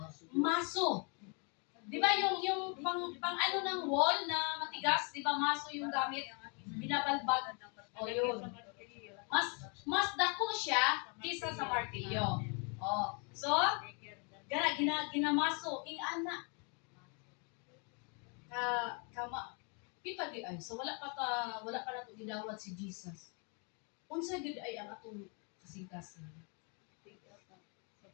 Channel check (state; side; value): quieter; right; 36.0 dB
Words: maso. Di ba yung pang ano ng wall na matigas, di ba maso yung gamit? Binabalbag. O yun. Mas dako siya kisa sa martilyo. O, so, ginamaso ing ana kama Kita di ay so wala pa nato gidawat si Jesus. Unsa gid ay ang atong kasing-kasing?